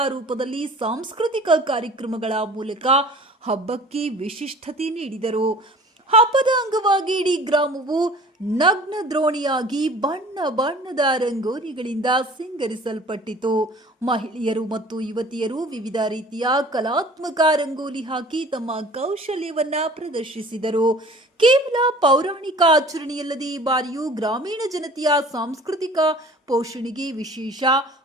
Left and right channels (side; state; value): both; normal; correlation 0.46